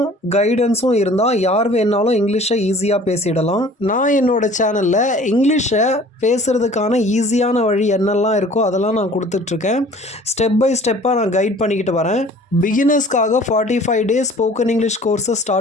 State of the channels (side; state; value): both; normal; correlation 0.49